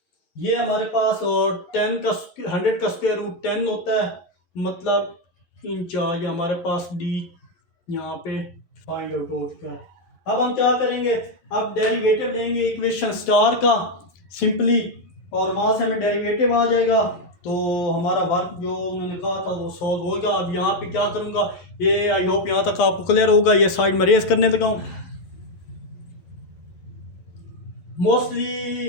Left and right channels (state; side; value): late; right; 11 ms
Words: ये हमारे पास। और 10 का 100 का स्क्वायर रूट 10 होता है, मतलब इंच आ गया हमारे पास। डी यहाँ पे फाइंड आउट हो चुका है। अब हम क्या करेंगे, अब डेरिवेटिव लेंगे इक्वेशन स्टार का सिंपली, और वहाँ से हमें डेरिवेटिव आ जाएगा। तो हमारा वर्क जो उन्होंने कहा था वो सॉल्व होगा। अब यहाँ पे क्या करूँगा, ये आई होप यहाँ तक आपको क्लियर होगा। ये साइड में रेस करने लगा हूँ। मोस्टली